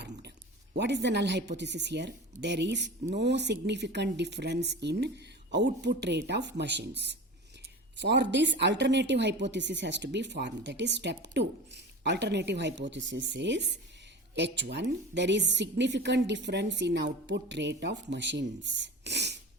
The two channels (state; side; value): normal; both; correlation 0.32